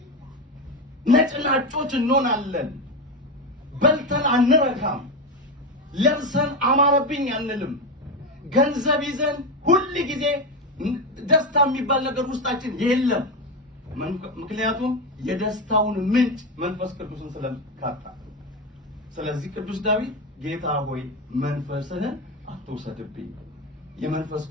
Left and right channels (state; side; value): normal; both; correlation 0.14